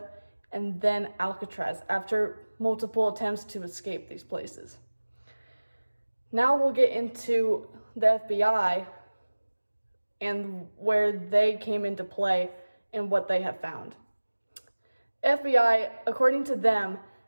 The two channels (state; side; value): inverted; both; correlation -1.00